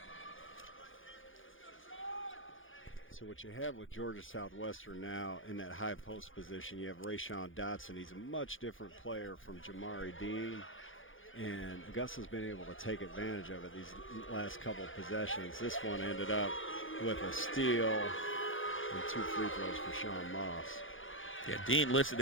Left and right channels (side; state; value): right; late; 0.58 ms